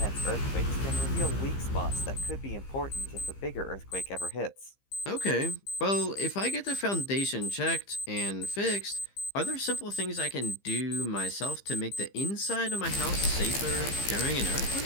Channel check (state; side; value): late; right; 15 ms